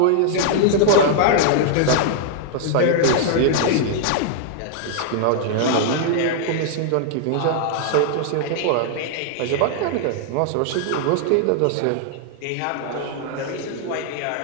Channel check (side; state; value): both; different; correlation -0.01